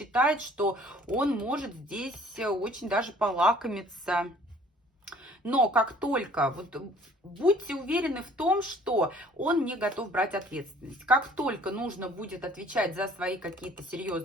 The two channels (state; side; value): normal; both; correlation 0.54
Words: что он может здесь очень даже полакомиться. Но как только, вот будьте уверены в том, что он не готов брать ответственность. Как только нужно будет отвечать за свои какие-то